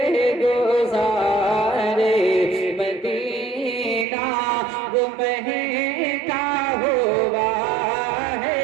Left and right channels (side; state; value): left; drops out; at 4.0 s